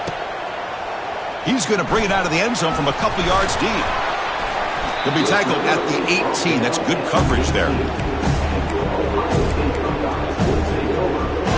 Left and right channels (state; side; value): identical; both; correlation 1.00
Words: He's going to bring it out of the end zone from a couple yards deep. He'll be tackled at the 18. That's good coverage there.